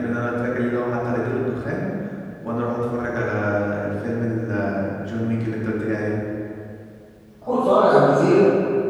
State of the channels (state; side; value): identical; both; correlation 1.00